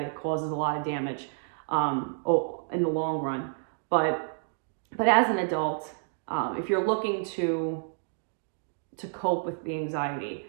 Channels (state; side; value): silent; left; digital silence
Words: it causes a lot of damage in the long run. But as an adult, if you're looking to cope with the anxiety,